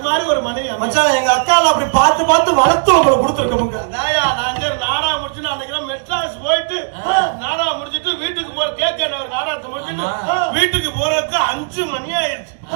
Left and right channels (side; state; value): left; silent; digital silence